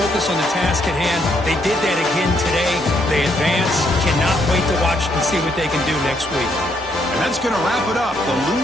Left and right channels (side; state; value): both; normal; correlation 0.73